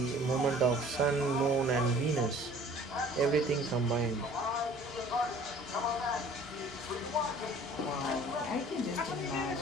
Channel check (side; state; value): both; normal; correlation 0.50